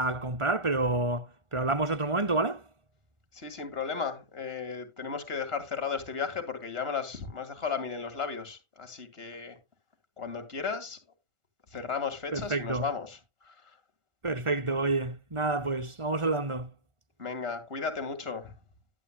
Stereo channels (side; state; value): left; late; 1.4 ms